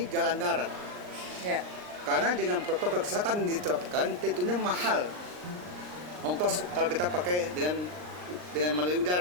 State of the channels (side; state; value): left; late; 39 ms